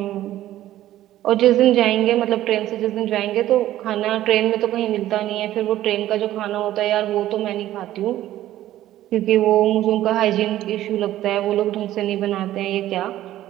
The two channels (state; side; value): quieter; left; 13.8 dB